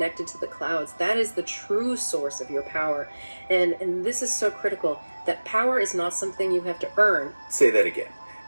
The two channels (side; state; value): both; inverted; correlation -1.00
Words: to the clouds. That is the true source of your power. And this is so critical, that power is not something you have to earn. Say that again,